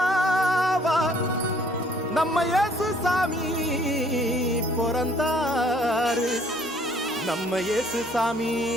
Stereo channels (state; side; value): normal; both; correlation 0.60